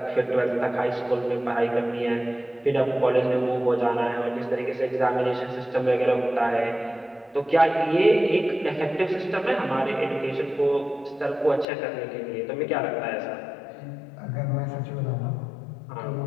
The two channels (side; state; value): right; drops out; at 11.7 s